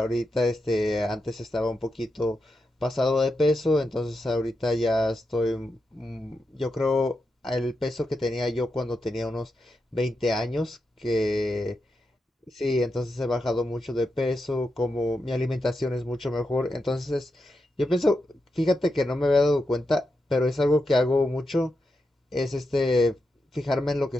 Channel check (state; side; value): normal; both; correlation 0.87